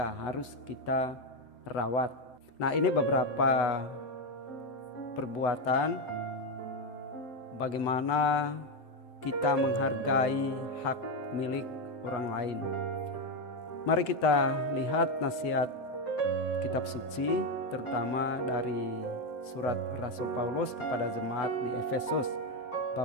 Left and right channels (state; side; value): late; right; 8.1 ms